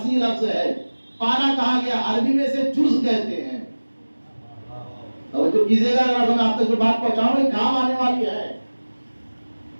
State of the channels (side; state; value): both; inverted; correlation -1.00